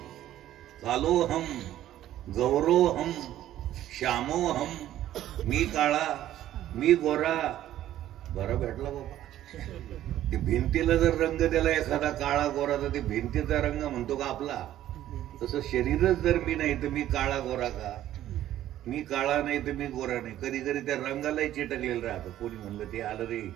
कालोहम, गौरोहम, श्यामोहम. मी काळा, मी गोरा. बरं भेटला बाबा. ते भिंतीला जर रंग दिला एखादा काळा गोरा तर ते भिंतीचा रंग म्हणतो का आपला? तसं शरीरच जर मी नाही तर मी काळा गोरा का? मी काळा नाही तर मी गोरा नाही. कधी कधी त्या रंगालाही चिटकलेलं राहतं. कोणी म्हणलं ते आलं रे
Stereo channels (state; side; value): quieter; left; 12.8 dB